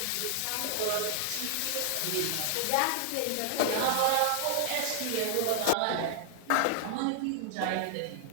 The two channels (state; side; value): different; both; correlation 0.00